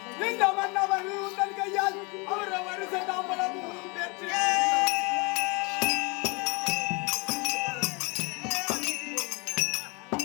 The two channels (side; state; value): right; quieter; 29.0 dB